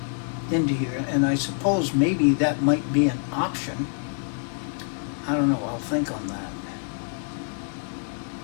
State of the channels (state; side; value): silent; right; 61 dB below the other